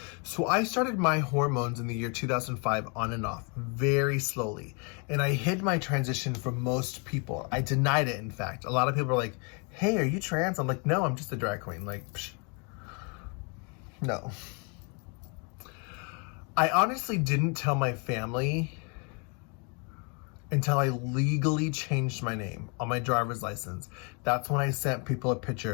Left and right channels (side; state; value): right; quieter; 34.9 dB